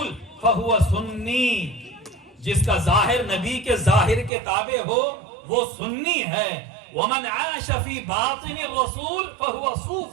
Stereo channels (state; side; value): drops out; left; at 4.3 s